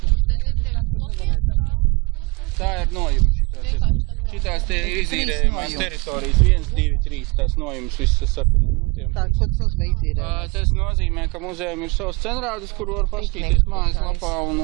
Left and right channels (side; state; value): left; quieter; 27.3 dB